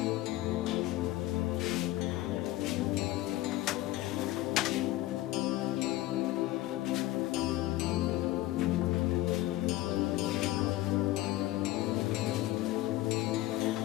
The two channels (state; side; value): quieter; right; 16.5 dB